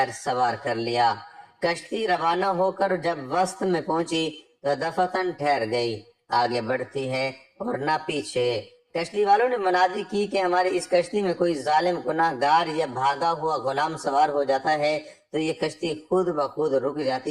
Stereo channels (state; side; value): identical; both; correlation 1.00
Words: سوار کر لیا۔ کشتی روانہ ہو کر جب وسط میں پہنچی تو دفعتاً ٹھہر گئی، آگے بڑھتی ہے اور نہ پیچھے۔ کشتی والوں نے منادی کی کہ ہماری اس کشتی میں کوئی ظالم گناہ گار یا بھاگا ہوا غلام سوار ہو جاتا ہے تو یہ کشتی خود بخود رک